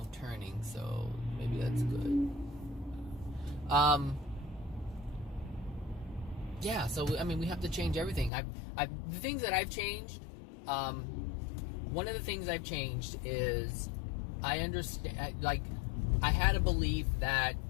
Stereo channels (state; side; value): drops out; right; at 8.3 s